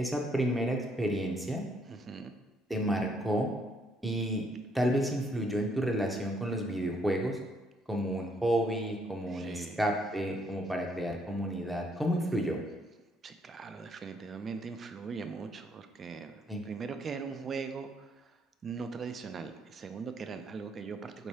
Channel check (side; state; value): both; normal; correlation 0.70